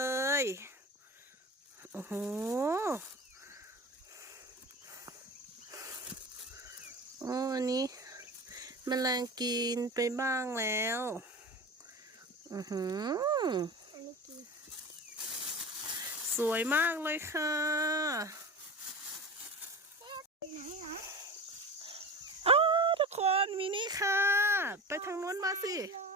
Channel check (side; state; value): both; normal; correlation 0.31